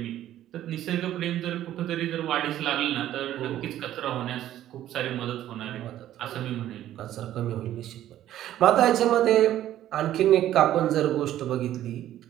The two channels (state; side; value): quieter; left; 12.6 dB